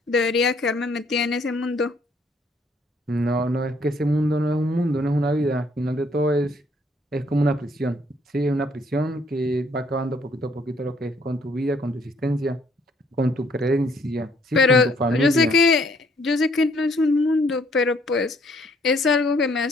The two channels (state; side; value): normal; both; correlation 0.65